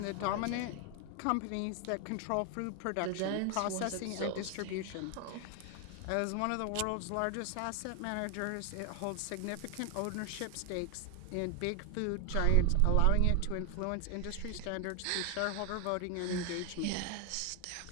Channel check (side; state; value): both; different; correlation 0.00